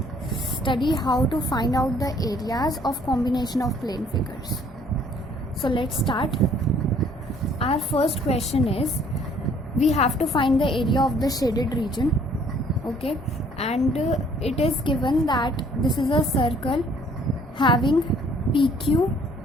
study how to find out the areas of combination of plane figures. So let's start. Our first question is we have to find the area of the shaded region. Okay, and it is given that this is a circle having PQ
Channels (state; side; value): normal; both; correlation 0.60